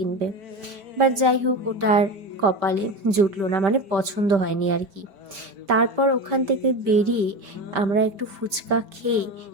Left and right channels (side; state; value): left; late; 5.1 ms